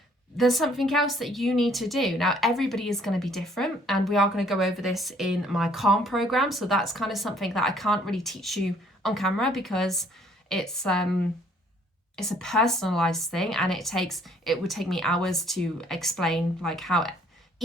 there's something else that you need to do. Now, everybody is going to be different, and we are going to go over this in my Calm program. So that's kind of something that I can't really teach you on camera because it's a personalized thing, and it would take me hours to explain like how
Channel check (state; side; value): normal; both; correlation 0.61